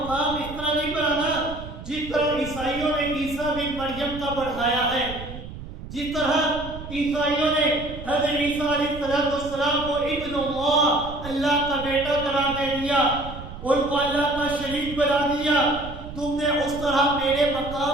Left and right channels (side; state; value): right; noise; rumble, 12 dB below the sound